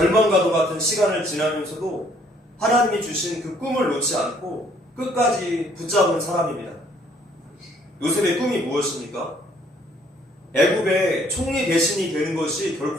같은 시간을 지나면서도 하나님이 주신 그 꿈을 놓지 않고 끝까지 붙잡은 사람입니다. 요셉의 꿈이 무엇입니까? 애굽의 총리 대신이 되는 것이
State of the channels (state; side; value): normal; both; correlation 0.63